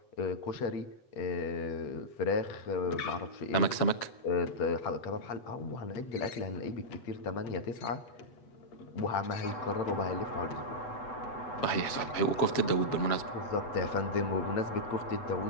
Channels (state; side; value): late; right; 8.0 ms